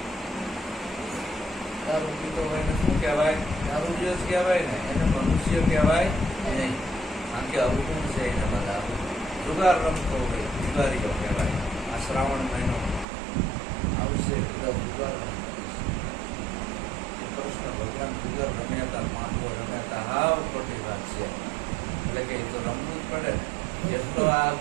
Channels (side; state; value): left; drops out; at 13.1 s